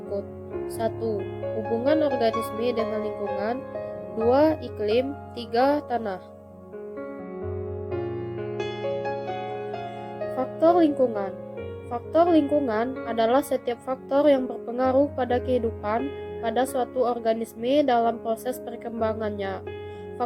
1. Hubungan organisme dengan lingkungan. 2. Iklim. 3. Tanah. Faktor lingkungan. Faktor lingkungan adalah setiap faktor yang berpengaruh pada kehidupan pada suatu organisme dalam proses perkembangannya.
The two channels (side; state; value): both; identical; correlation 1.00